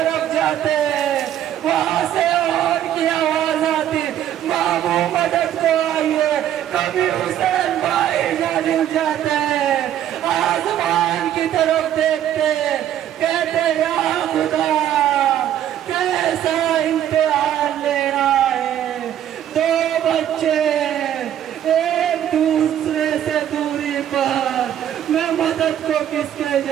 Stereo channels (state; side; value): quieter; left; 11.0 dB